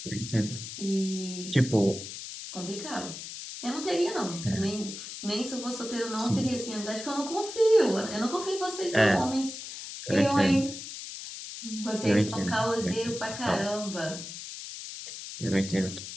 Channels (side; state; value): left; noise; hiss, 10 dB below the sound